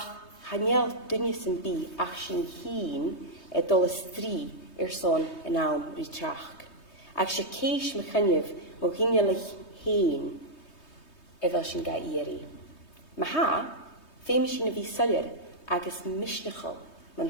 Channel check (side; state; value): right; late; 3.2 ms